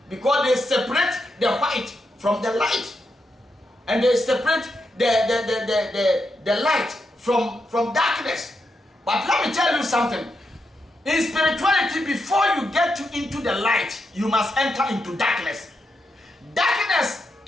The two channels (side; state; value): both; normal; correlation 0.84